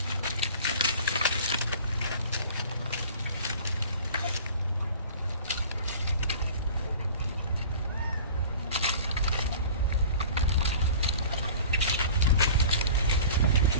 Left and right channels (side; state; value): both; inverted; correlation -0.42